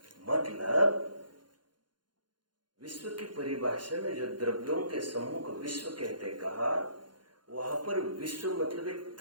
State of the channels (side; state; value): left; late; 0.71 ms